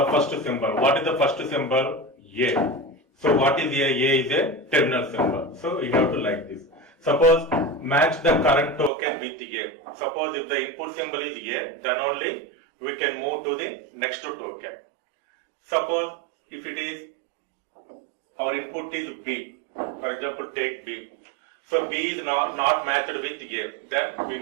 first symbol. What is the first symbol? A. So what is A? A is a terminal symbol. So you have to like this. Suppose match the current token with A. Suppose if the input symbol is A, then only we can move to the next token. Suppose if it is our input is B, for example take B. So B is not matched with A, then we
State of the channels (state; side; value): drops out; left; at 8.9 s